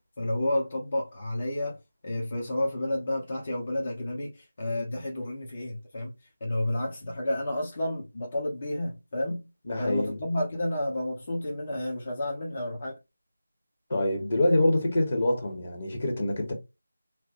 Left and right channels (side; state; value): both; inverted; correlation -0.94